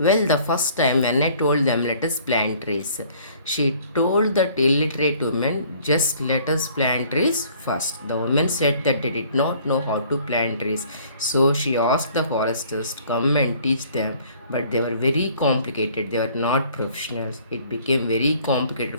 the first time when I told them let us plant trees, she told that illiterate women just let us plant trees first. The woman said that they did not know how to plant trees, so she asked the foresters to come and teach them, but they were very complicated. They were not professionals. It became very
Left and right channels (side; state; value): both; inverted; correlation -0.56